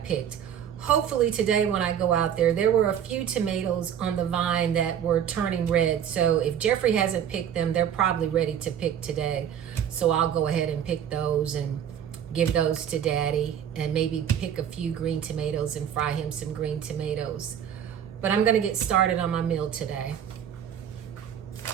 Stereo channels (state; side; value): quieter; left; 9.1 dB